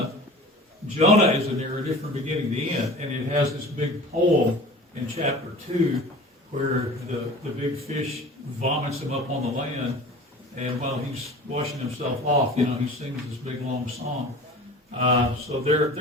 is a narrative from beginning to end, and it has this big poem in chapter 2 where the big fish vomits him up on the land, and while he's washing himself off, he sings this big long song. So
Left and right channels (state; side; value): normal; both; correlation 0.39